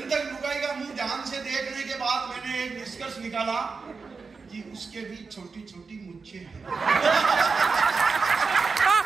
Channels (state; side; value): quieter; left; 4.7 dB